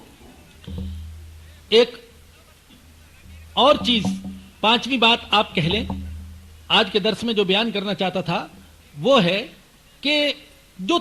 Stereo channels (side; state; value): both; identical; correlation 1.00